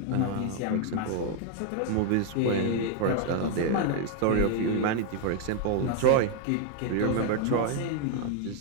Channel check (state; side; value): different; both; correlation 0.00